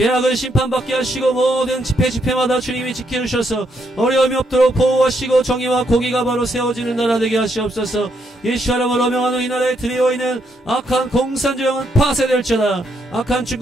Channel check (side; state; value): both; normal; correlation 0.76